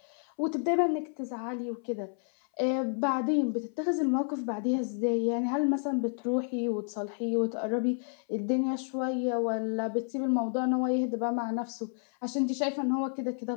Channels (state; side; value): silent; right; 58 dB below the other